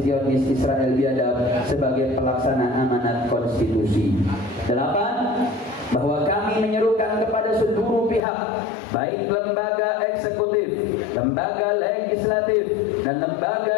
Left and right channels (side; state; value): right; drops out; at 8.2 s